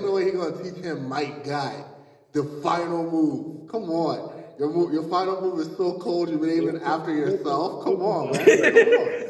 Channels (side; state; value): both; identical; correlation 1.00